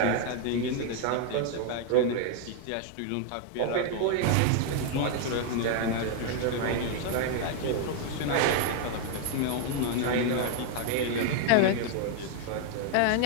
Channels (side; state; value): both; different; correlation 0.00